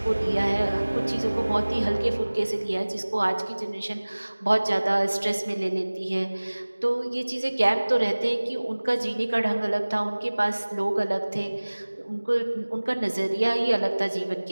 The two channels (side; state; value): both; inverted; correlation -1.00